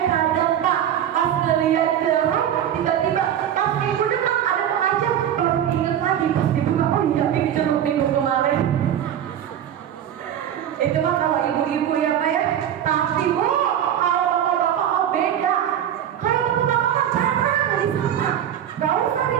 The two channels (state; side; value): quieter; left; 10.2 dB